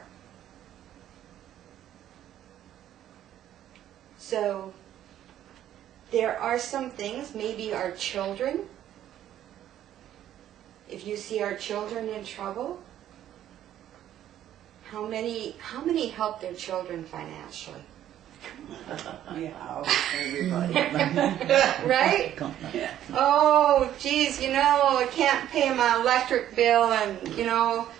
So, there are some things, maybe our children, if you see our children in trouble, how many help their children financially? Yeah, everybody. Right? Yeah. Oh, geez, I can't pay my electric bill, and,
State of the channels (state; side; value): quieter; left; 11.6 dB